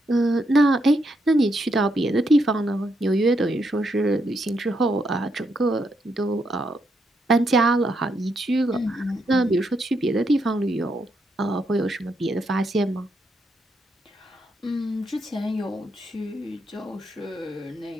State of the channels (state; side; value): normal; both; correlation 0.79